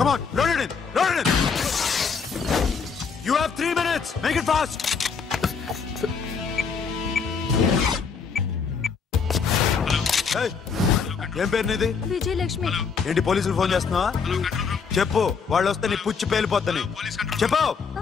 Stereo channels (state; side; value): quieter; right; 5.7 dB